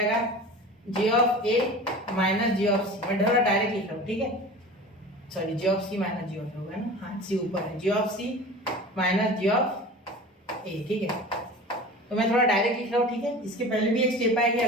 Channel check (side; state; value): both; normal; correlation 0.37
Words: g(a) माइनस g(c). मैं थोड़ा डायरेक्ट लिख रहा हूँ। ठीक है, सॉरी g(c) माइनस g(a) होगा ना, हाँ c ऊपर है, g(c) माइनस g(a). ठीक है, तो मैं थोड़ा डायरेक्ट लिख रहा हूँ। ठीक है, इसके पहले भी एक स्टेप आएगी,